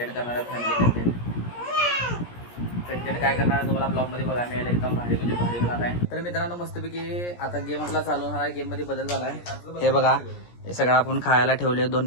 करणार आहे, फॅमिली कंटेंट काय करणार आहे तुम्हाला ब्लॉगमध्ये बघायला मिळेल. एकदम भारी म्हणजे भारी होणार आहे. तर मित्रांनो मस्तपैकी आता गेम आपला चालू होणार आहे. गेममध्ये बदल झाला आहे. हे बघा, हे सगळं आपण खायला ठेवले. 2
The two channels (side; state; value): right; late; 17 ms